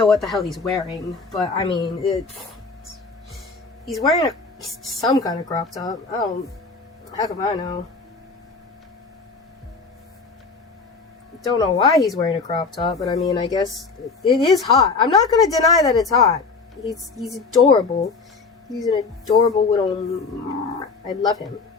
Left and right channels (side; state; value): right; quieter; 4.4 dB